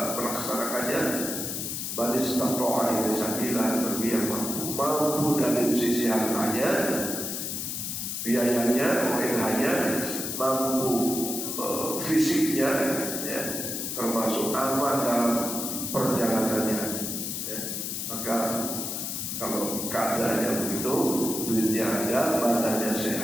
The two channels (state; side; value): noise; left; hiss, 4 dB below the sound